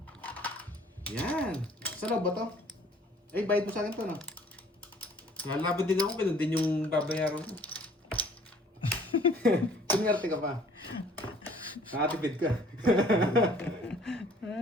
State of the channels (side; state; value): both; normal; correlation 0.55